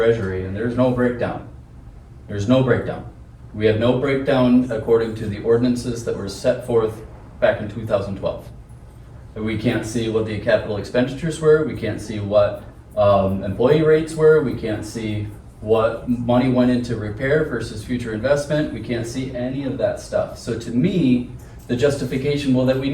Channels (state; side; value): identical; both; correlation 1.00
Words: and there's no breakdown. There's no breakdown. We have no breakdown according to the ordinances that were set forth back in 2012. And we can't see what the capital expenditures were, we can't see what employee rates were, we can't see what money went into repair versus future investment, we can't see any of that stuff. So to me, the justification, well, that we